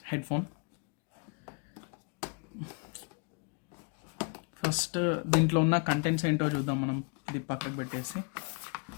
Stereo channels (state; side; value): quieter; right; 36.8 dB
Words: హెడ్ ఫోన్. ఫస్ట్ దీంట్లో ఉన్న కంటెంట్స్ ఏంటో చూద్దాం మనం, ఇది పక్కకు పెట్టేసి.